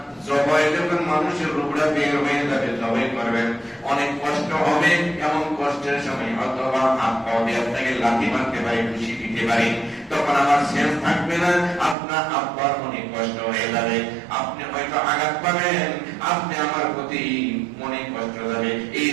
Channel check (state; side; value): drops out; left; at 12.0 s